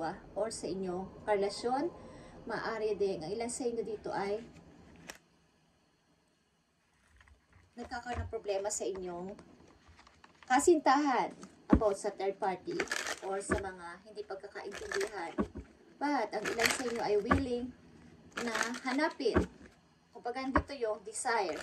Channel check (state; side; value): identical; both; correlation 1.00